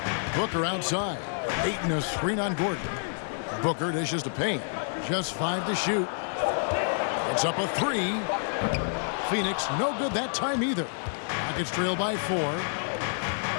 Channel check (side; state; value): right; silent; digital silence